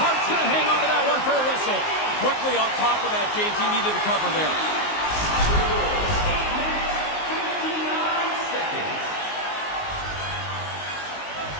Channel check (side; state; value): right; late; 19 ms